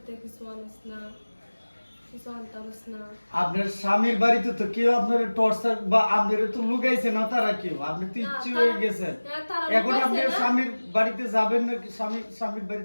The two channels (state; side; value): inverted; both; correlation -1.00